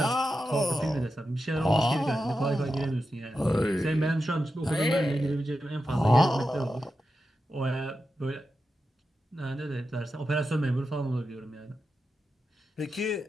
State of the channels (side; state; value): both; normal; correlation 0.90